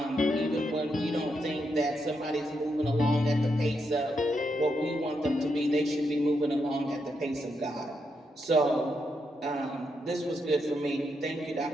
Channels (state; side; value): normal; both; correlation 0.81